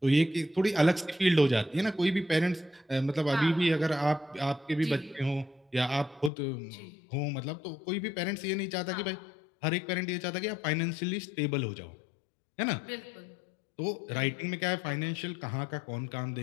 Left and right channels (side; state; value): right; drops out; at 6.3 s